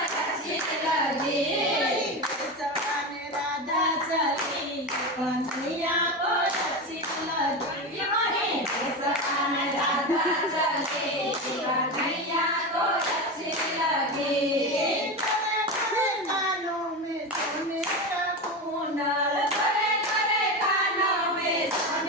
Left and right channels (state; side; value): normal; both; correlation 0.20